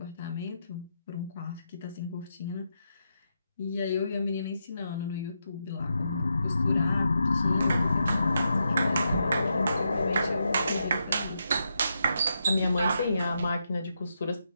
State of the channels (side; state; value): both; inverted; correlation -0.83